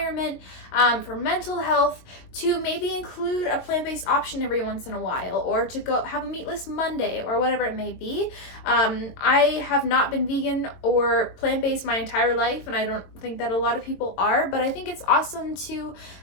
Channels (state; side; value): late; right; 22 ms